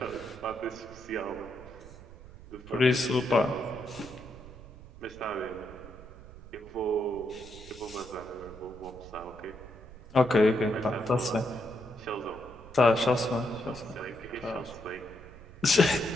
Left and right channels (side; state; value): right; noise; rumble, 17 dB below the sound